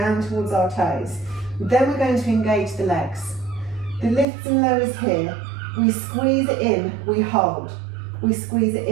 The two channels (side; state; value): left; drops out; at 4.2 s